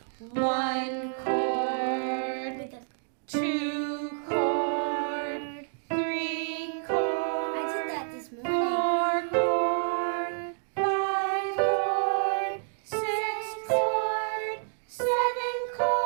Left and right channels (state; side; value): silent; left; digital silence